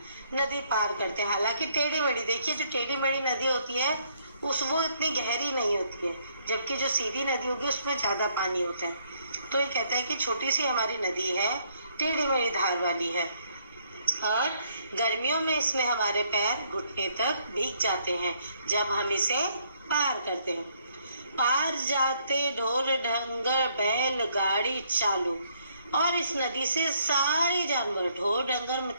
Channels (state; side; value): inverted; both; correlation -0.69